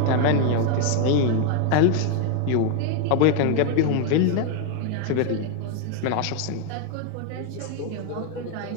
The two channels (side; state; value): both; different; correlation 0.00